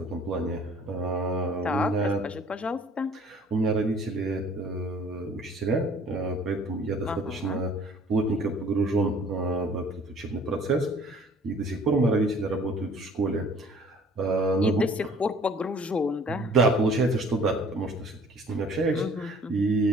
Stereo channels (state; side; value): normal; both; correlation 0.53